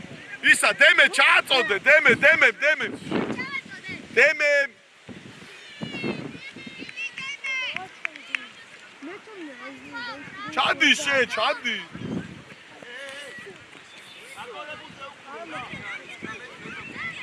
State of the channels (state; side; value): identical; both; correlation 1.00